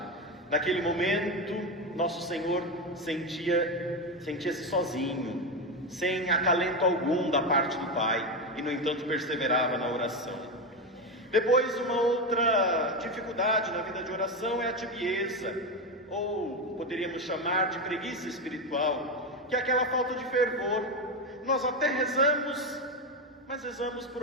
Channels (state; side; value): normal; both; correlation 0.14